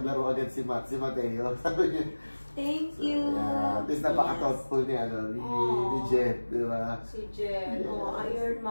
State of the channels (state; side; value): inverted; both; correlation -1.00